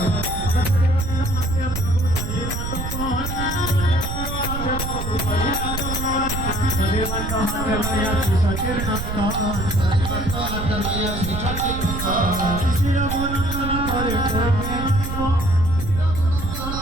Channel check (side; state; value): right; noise; rumble, 4 dB below the sound